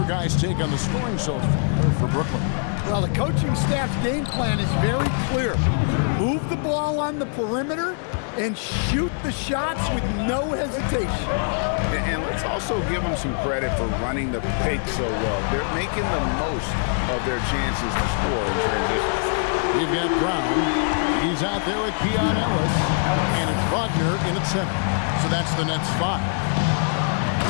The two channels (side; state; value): right; silent; 57 dB below the other